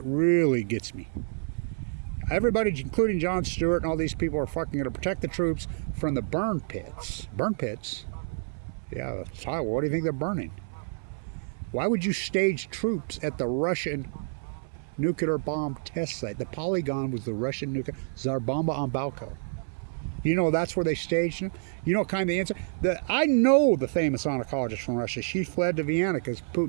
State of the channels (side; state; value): left; silent; 59 dB below the other